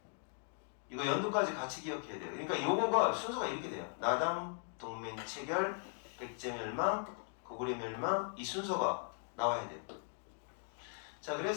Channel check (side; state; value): right; silent; 52 dB below the other